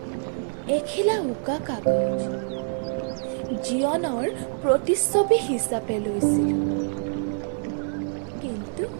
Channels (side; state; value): left; silent; digital silence